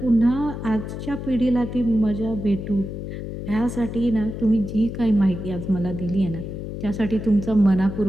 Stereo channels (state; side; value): noise; left; hum, 7 dB below the sound